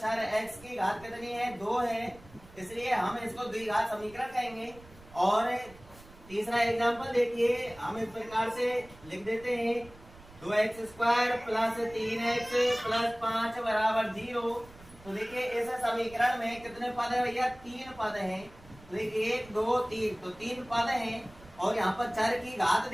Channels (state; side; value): noise; right; rumble, 22 dB below the sound